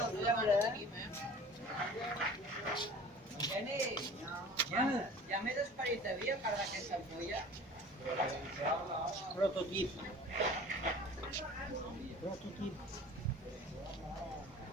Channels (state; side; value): normal; both; correlation 0.43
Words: ¿verdad? Ya me desparece para aquesta ampolla. Prototip. Prototip.